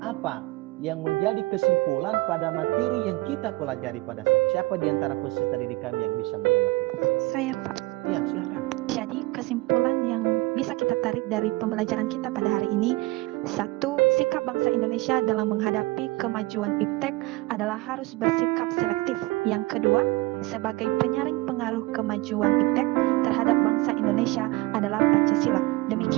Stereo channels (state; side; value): quieter; left; 21.6 dB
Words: apa yang menjadi kesimpulan pada materi yang kita pelajari pada saat ini? Siapa di antara peserta didik kami yang bisa menanggapi? Saya Pak. Ya, silakan. Jadi kesimpulan yang bisa kita tarik dari pembelajaran kita pada hari ini, 1. Sikap bangsa Indonesia dalam menghadapi kemajuan iptek adalah harus bersikap selektif. Yang kedua, sebagai penyaring pengaruh kemajuan iptek terhadap bangsa Indonesia adalah Pancasila.